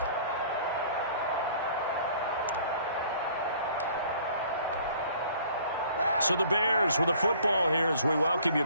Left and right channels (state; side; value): inverted; both; correlation -0.54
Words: So the Bears with a football here as we welcome you